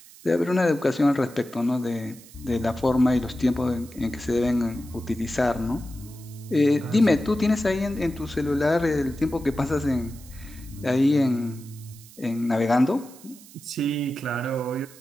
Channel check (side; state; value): right; noise; hiss, 21 dB below the sound